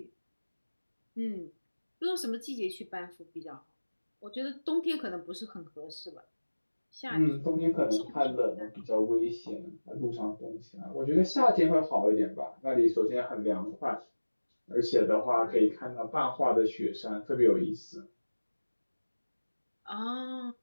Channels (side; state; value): both; inverted; correlation -1.00